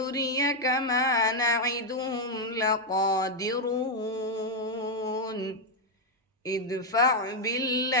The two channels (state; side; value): normal; both; correlation 0.00